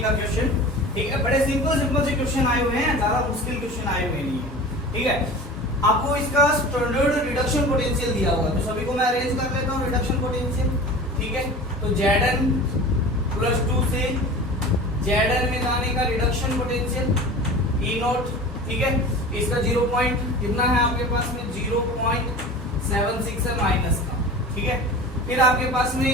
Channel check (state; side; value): normal; both; correlation 0.37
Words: का क्वेश्चन, ठीक है। बड़े सिंपल से क्वेश्चन आए हुए हैं, ज्यादा मुश्किल क्वेश्चन आए हुए नहीं है, ठीक है। आपको इसका स्टैंडर्ड रिडक्शन पोटेंशियल दिया हुआ है, तो सभी को मैं अरेंज कर लेता हूं रिडक्शन पोटेंशियल, ठीक है। तो Zn प्लस 2 से Zn में जाने का रिडक्शन पोटेंशियल E नॉट, ठीक है। इसका 0 पॉइंट कितना है आपके पास में, 0.76 है माइनस का, ठीक है। फिर आपके पास